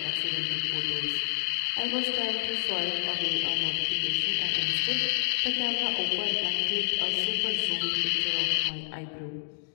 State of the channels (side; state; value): right; silent; digital silence